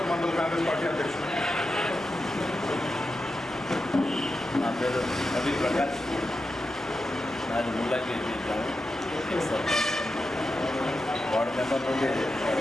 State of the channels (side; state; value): both; normal; correlation 0.89